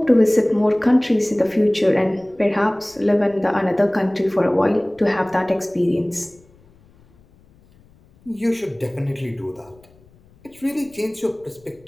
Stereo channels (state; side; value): noise; left; rumble, 29 dB below the sound